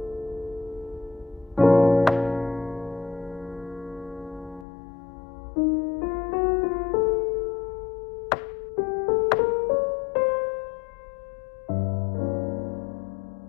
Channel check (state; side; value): drops out; right; at 4.7 s